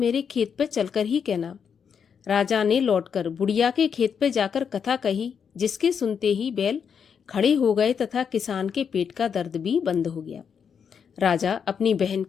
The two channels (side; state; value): right; quieter; 7.0 dB